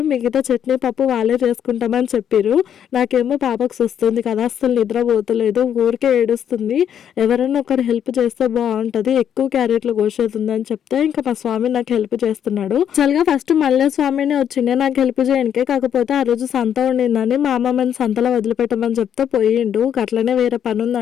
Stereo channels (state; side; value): quieter; right; 9.1 dB